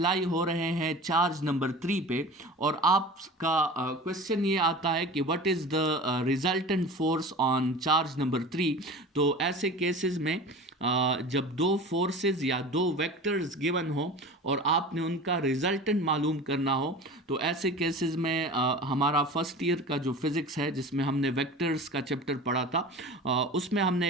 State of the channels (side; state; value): both; normal; correlation 0.36